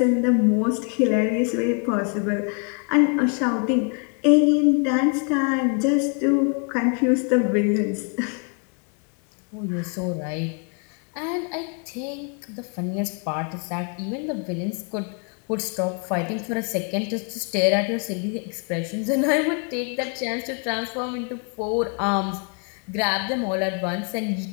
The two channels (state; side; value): quieter; right; 39.5 dB